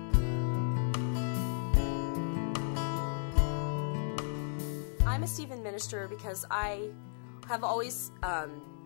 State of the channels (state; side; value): silent; right; digital silence